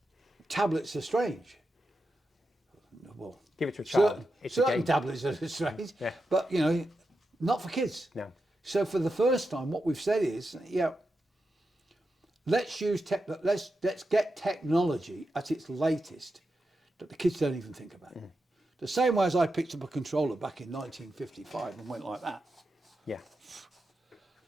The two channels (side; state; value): both; normal; correlation 0.88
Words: tablets are strange. Well, Give it to a child. It's a certain game. tablets are strange, Yeah. but you know, not for kids. No. So for the first time, what we've said is, yeah, let's get technology at its latest that the kids don't even think about. The same way as I picked up a controller back in 1955 and went like that. Yeah.